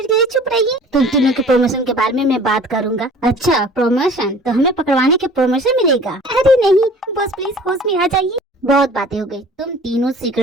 के लिए चुप रहिए। तुम तीनों के प्रमोशन के बारे में मैं बात करूंगा। अच्छा प्रमोशन? तो हमें पकड़वाने के प्रमोशन मिलेगा? अरे नहीं बॉस प्लीज होश में आ जाइए। बहुत बातें हो गई, तुम तीनों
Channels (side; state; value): both; normal; correlation 0.47